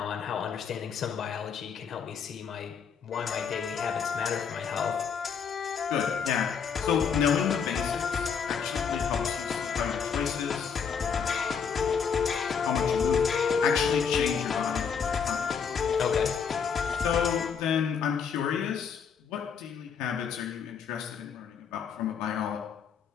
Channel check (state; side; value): quieter; right; 6.6 dB